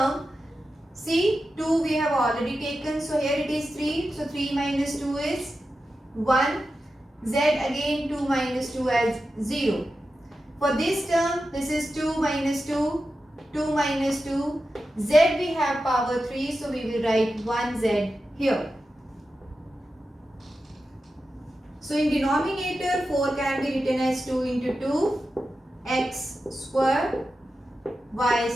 see, 2 we have already taken. So here it is 3. So 3 minus 2 is 1. Z again 2 minus 2 as 0. For this term, this is 2 minus 2. 2 minus 2. Z we have power 3. So we will write 1z here. So in denominator, 4 can be written as 2 into 2. X square, y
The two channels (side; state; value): both; normal; correlation 0.91